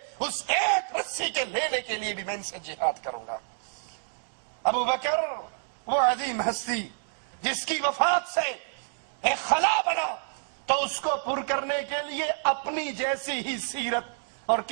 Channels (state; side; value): silent; left; digital silence